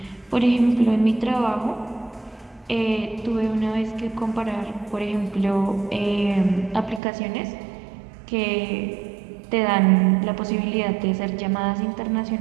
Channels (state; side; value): drops out; left; at 7.0 s